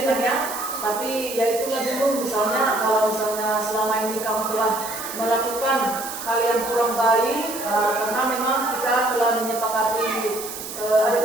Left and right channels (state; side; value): noise; right; hiss, 9 dB below the sound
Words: ya, Nak, ya. Tapi ya itulah dulu, misalnya kalau misalnya selama ini kamu telah melakukan hal yang kurang baik, karena memang kita telah menyepakati ada